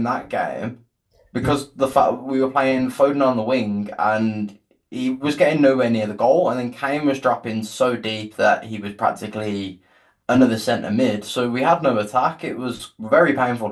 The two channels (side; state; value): both; identical; correlation 1.00